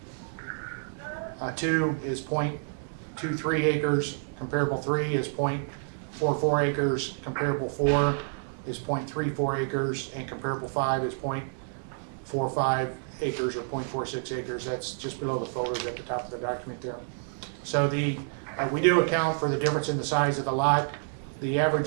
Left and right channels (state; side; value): silent; left; digital silence